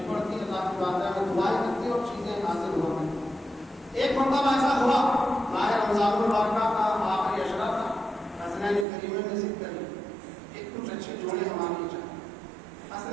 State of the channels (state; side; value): drops out; left; at 8.8 s